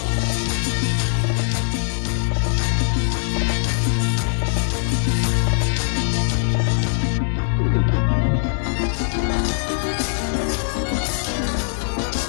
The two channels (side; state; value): right; silent; digital silence